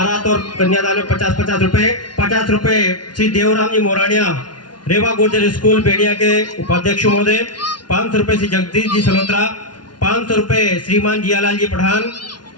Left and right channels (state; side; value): late; right; 0.70 ms